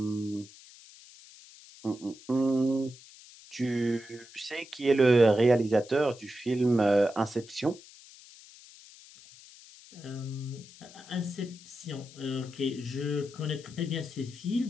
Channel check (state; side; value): noise; left; hiss, 21 dB below the sound